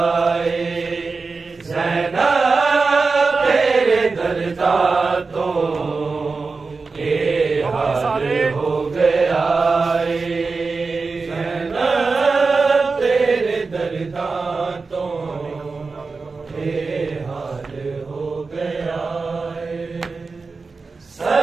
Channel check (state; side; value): quieter; left; 4.2 dB